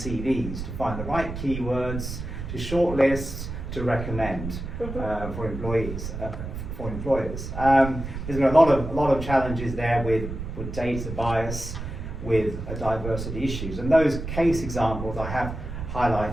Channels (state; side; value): noise; right; rumble, 7 dB below the sound